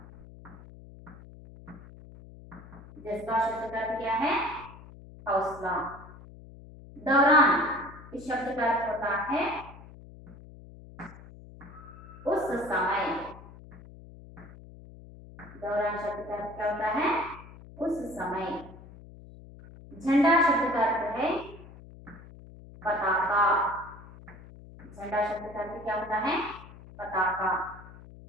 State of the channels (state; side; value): noise; left; hum, 18 dB below the sound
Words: जज्बा शब्द का अर्थ क्या है? हौसला। दौरान इस शब्द का अर्थ होता है उस समय। दौरान शब्द का अर्थ क्या होता है? उस समय। झंडा शब्द का अर्थ है पताका। झंडा शब्द का अर्थ क्या होता है? पताका।